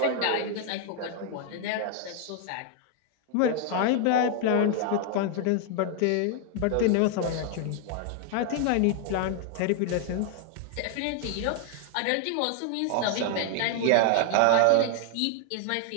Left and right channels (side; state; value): both; different; correlation 0.00